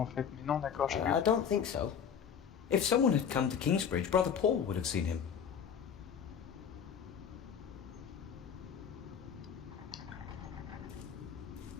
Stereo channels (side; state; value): right; quieter; 7.6 dB